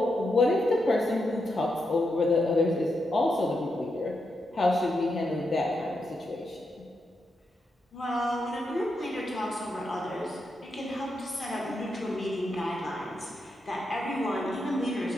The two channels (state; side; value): normal; both; correlation 0.84